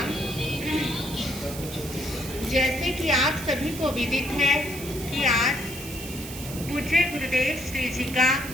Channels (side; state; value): right; noise; hiss, 11 dB below the sound